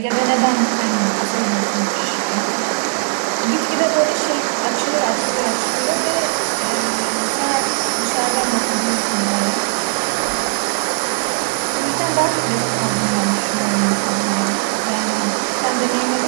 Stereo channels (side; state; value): left; silent; 67 dB below the other